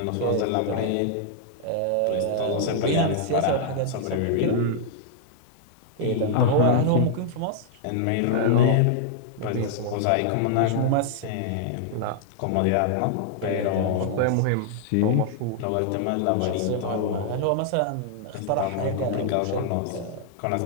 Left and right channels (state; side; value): different; both; correlation -0.01